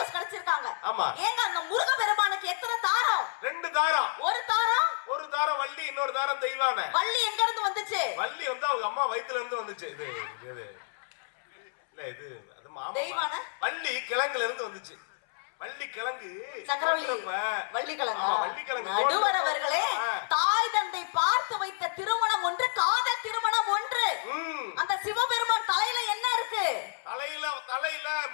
கிடைச்சிருக்காங்க. ஏங்க அந்த முருக பெருமானுக்கு எத்தனை தாரம்? 2 தாரம். ஒரு தாரம் தாரம் வள்ளி, இன்னொரு தாரம் தெய்வானை. வள்ளி எங்க இருந்து வந்துச்சு? வள்ளி வந்து அவங்க அம்மா வயித்துல இருந்து வந்துச்சு. இது இது இல்ல, இது அது மாமா. தெய்வானை வள்ளி கிழங்குல இருந்து வந்துச்சு. வள்ளி கிழங்கு சக்கரவள்ளி, வள்ளி கிழங்கு. வள்ளி கிழங்கு. நடுவர் அவர்களே, தாய் தந்தை பார்த்து வைத்த திருமணம் ஒன்று, காதல் திருமணம் ஒன்று. அந்த சிவபெருமான் தலையில என்ன இருக்கு? தலையில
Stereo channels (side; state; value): right; silent; 58 dB below the other